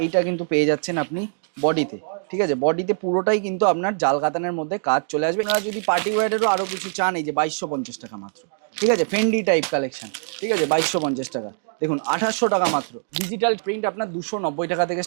এইটা কিন্তু পেয়ে যাচ্ছেন আপনি বডিতে। ঠিক আছে, বডিতে পুরোটাই কিন্তু আপনার জাল কাতানের মধ্যে কাজ চলে আসবে। আর যদি পার্টি ওয়্যারেরও আরো কিছু চান এই যে 2250 টাকা মাত্র। ঠিক আছে, ফেন্ডি টাইপ কালেকশন। ঠিক আছে, 2250 টাকা। দেখুন 2800 টাকা মাত্র। ডিজিটাল প্রিন্ট আপনার 290 টাকা থেকে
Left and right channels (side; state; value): left; silent; 63 dB below the other